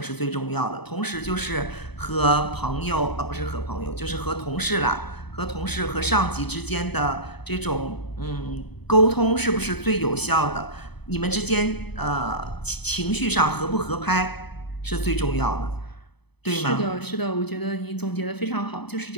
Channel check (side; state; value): right; late; 0.98 ms